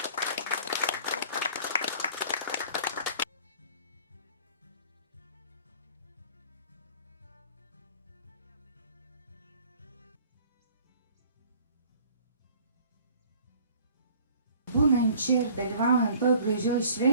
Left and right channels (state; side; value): inverted; both; correlation -0.50